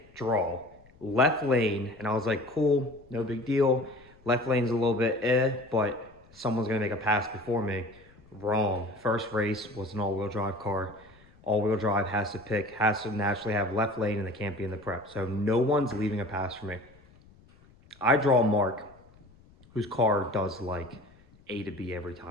draw, left lane, and I was like, cool, no big deal. Left lane's a little bit but someone's gonna make a pass before me. Wrong. First race was an all-wheel drive car. All-wheel drive has to naturally have left lane, and they can't be in the prep. So no one's leaving a pass for me. I draw Mark, whose car does like A to B every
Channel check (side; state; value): left; noise; rumble, 27 dB below the sound